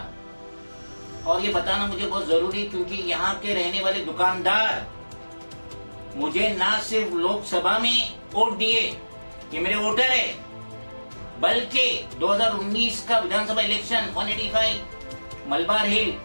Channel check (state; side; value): inverted; both; correlation -1.00